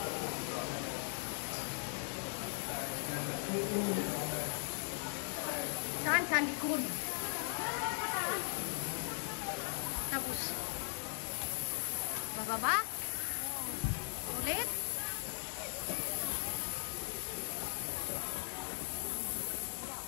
Saan sa likod? Tapos bababa? Ulit?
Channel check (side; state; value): right; silent; 52 dB below the other